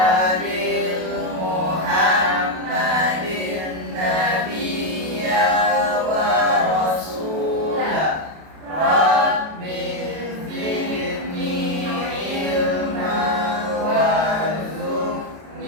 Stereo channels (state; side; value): late; left; 32 ms